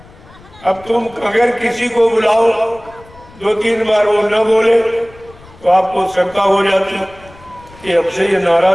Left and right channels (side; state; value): left; noise; rumble, 23 dB below the sound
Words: अब तुम अगर किसी को बुलाओ 2-3 बार वो न बोले तो आपको शंका हो जाती कि हमसे ये